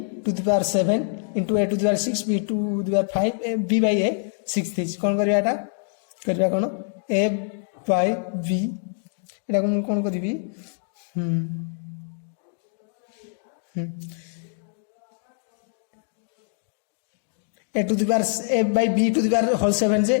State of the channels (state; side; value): silent; right; 62 dB below the other